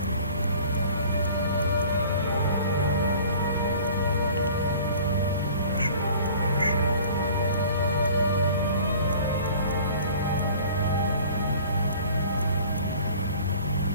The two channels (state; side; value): inverted; both; correlation -0.48